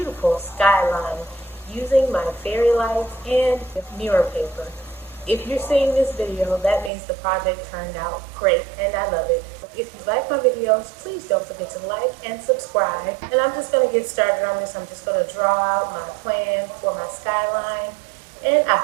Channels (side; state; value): left; drops out; at 6.9 s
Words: skyline using my fairy lights and mirror paper. If you're seeing this video, that means the project turned out great and I love it. If you like my videos, please don't forget to like and subscribe. And I'm just going to get started on this. I'm just going to draw out my plan for my skyline, and I